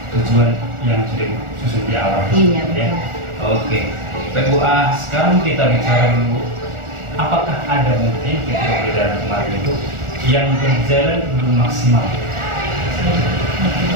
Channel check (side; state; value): left; late; 1.4 ms